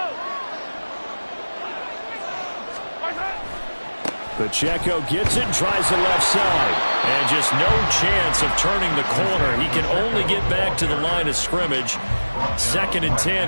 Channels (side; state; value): both; inverted; correlation -1.00